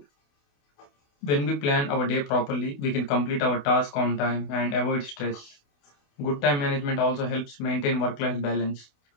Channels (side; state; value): right; late; 28 ms